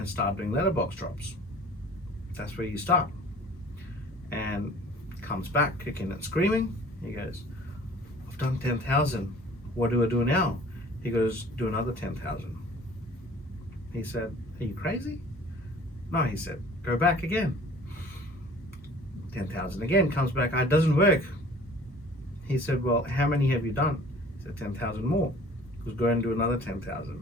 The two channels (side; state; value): both; normal; correlation 0.49